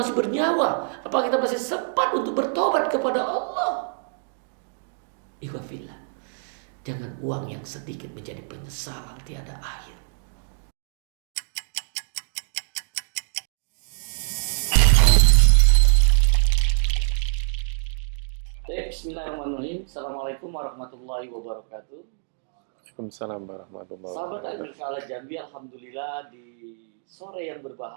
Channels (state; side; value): silent; left; digital silence